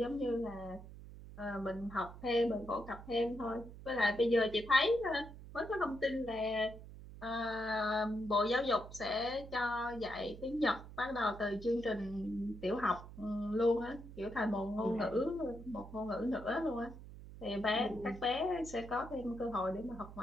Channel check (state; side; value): noise; right; hum, 14 dB below the sound